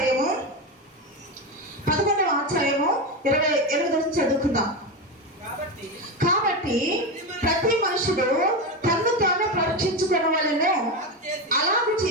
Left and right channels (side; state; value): both; normal; correlation 0.16